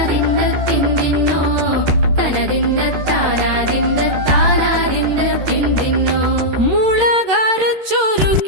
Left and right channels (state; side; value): late; left; 13 ms